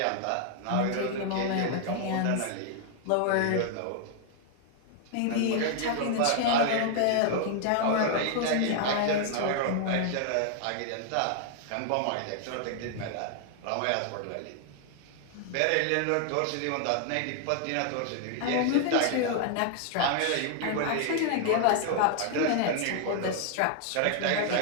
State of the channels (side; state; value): both; different; correlation 0.00